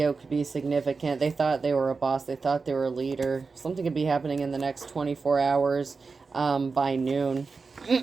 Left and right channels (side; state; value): left; quieter; 4.5 dB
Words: could be significant. They thought they were a boss. They thought they were a leader. Something could be happening in the next 24 hours by noon